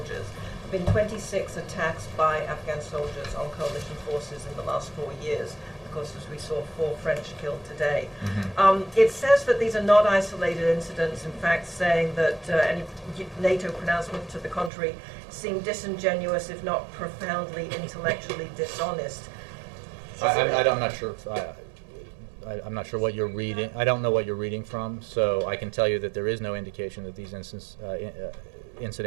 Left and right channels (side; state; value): left; drops out; at 14.7 s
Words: there have been 26 attacks by Afghan soldiers on coalition forces in the last 4 years. Of course, as we saw, 4 French killed today. It says that these are not isolated incidents, in fact saying that any NATO pronouncement to the contrary seemed disingenuous, if not profoundly intellectually dishonest. I'm not sure. I'm not sure what you're reading. I don't know what you're reading from, so I can tell you that there is no indication that these